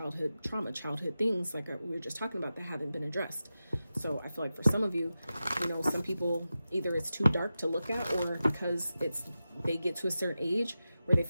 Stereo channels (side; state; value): both; inverted; correlation -0.93